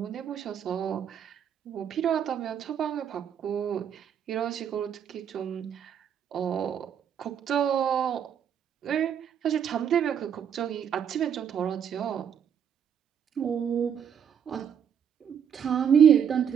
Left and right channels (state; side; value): quieter; left; 8.2 dB